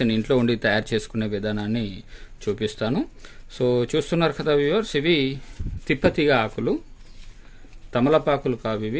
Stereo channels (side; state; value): both; identical; correlation 1.00